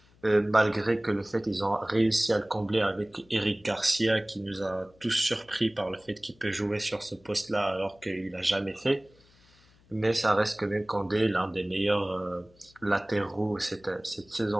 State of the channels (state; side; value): noise; left; hum, 30 dB below the sound